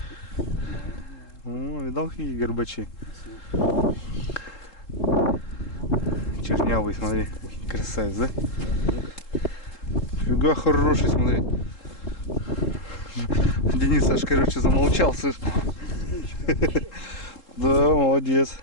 О, видал, какие горбачи? Чернявый, смотри. Красавец, да? Фига хороший, смотри. Денис аж, короче, замолчал, слышь. Да, молодец.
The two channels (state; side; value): late; right; 3.8 ms